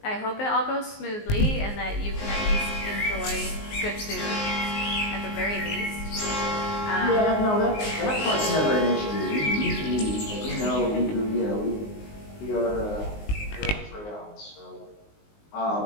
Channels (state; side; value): late; right; 19 ms